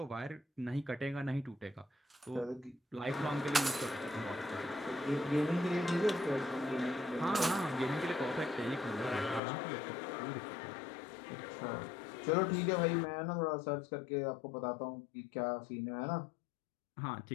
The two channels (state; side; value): drops out; right; at 9.4 s